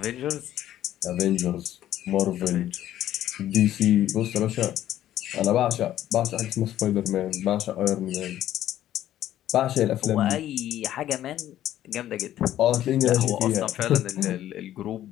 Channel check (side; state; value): right; quieter; 12.5 dB